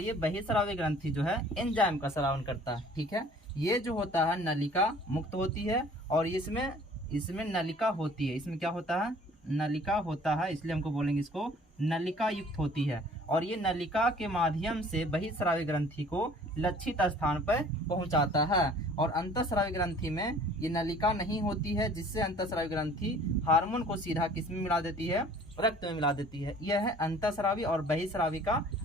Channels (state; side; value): normal; both; correlation 0.51